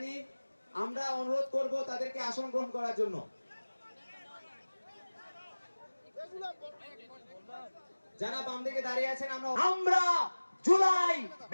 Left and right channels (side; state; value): both; inverted; correlation -1.00